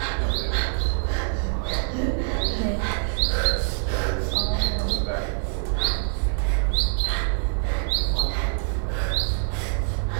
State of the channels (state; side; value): silent; left; digital silence